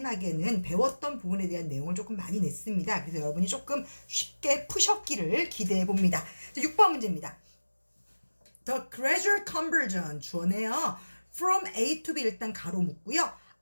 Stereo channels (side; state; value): both; inverted; correlation -1.00